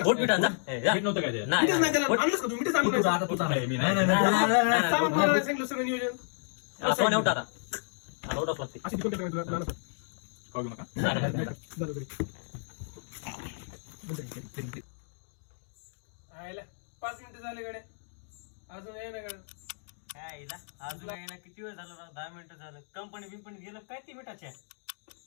मीठ नव्हतं काय ते मिठच नाही त्याला आणलंच का तुम्ही मिठच आणलं आता तू चाललाय मी नाही सामान कोणाला नाही सांगितलं सगळं नियोजन सोन्या उठा आता उठाच लागते. अशी तिकडे काय तुला लहान खाऊ घेऊ नका बरोबर आयला 5 मिनिटं झाले गड्या अजून ये ना गड्या. काय हिला अजून काय ना किती वेळ झाला राव 10 मिनिटं झालं. कंपनी बिंपनी गेलं काय ती मिठाच्या.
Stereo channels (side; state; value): right; silent; digital silence